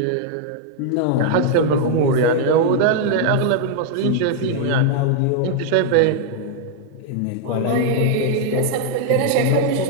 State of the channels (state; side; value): different; both; correlation 0.00